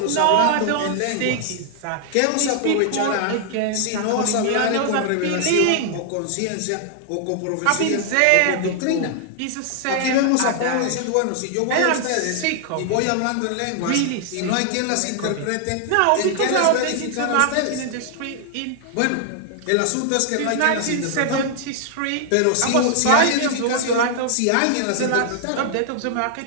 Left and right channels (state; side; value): different; both; correlation 0.00